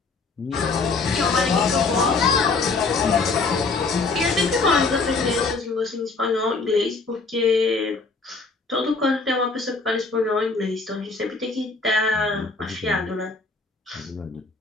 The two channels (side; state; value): right; quieter; 4.0 dB